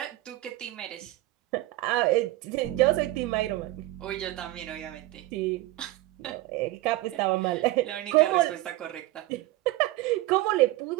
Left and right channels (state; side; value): quieter; left; 17.7 dB